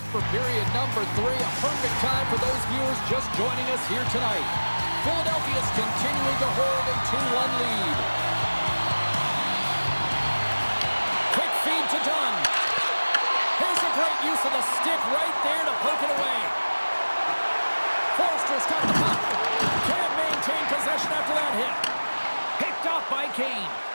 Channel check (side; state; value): both; inverted; correlation -1.00